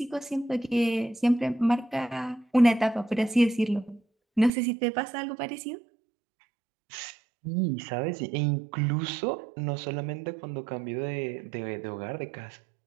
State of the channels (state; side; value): drops out; left; at 4.5 s